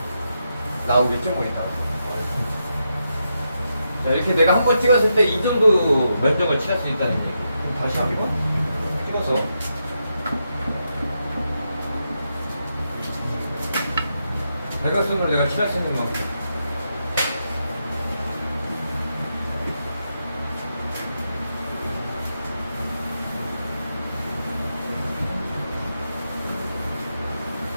나오겠죠, 보니까. 자, 이렇게 내가 한 번 찍었을 때 이 정도 면적을 칠할 수 있다는 얘기. 그럼 다시 한번 찍어서. 대각선으로 내가 칠할 수 있는 만큼.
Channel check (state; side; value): inverted; both; correlation -0.84